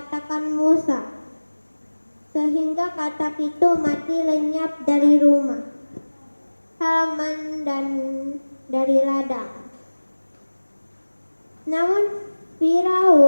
Musa, sehingga katak itu mati lenyap dari rumah, halaman, dan dari ladang. Namun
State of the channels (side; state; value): both; inverted; correlation -1.00